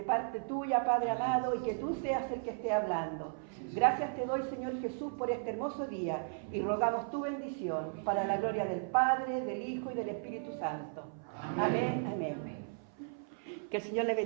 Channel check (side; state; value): left; silent; 54 dB below the other